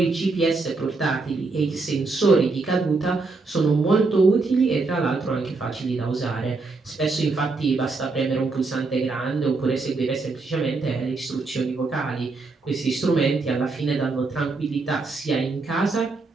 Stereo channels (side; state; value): left; quieter; 3.8 dB